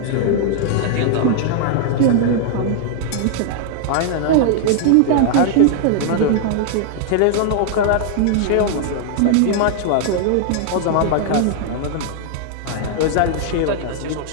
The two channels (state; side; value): different; both; correlation 0.00